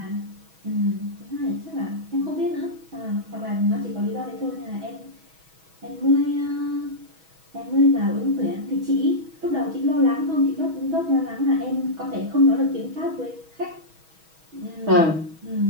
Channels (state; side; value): late; left; 6.2 ms